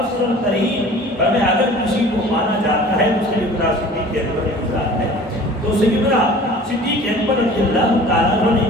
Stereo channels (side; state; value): both; normal; correlation 0.45